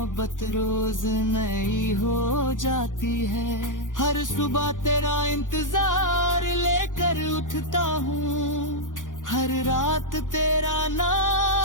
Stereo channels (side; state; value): right; late; 0.88 ms